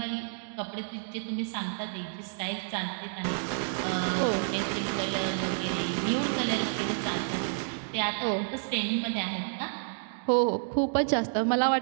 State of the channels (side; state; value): left; silent; digital silence